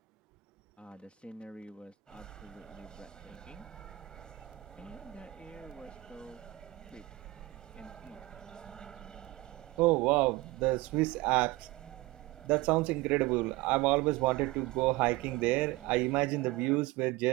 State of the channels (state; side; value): quieter; left; 19.8 dB